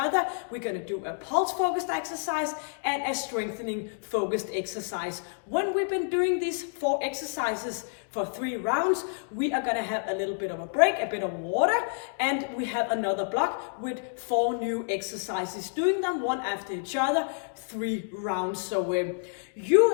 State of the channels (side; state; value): right; silent; digital silence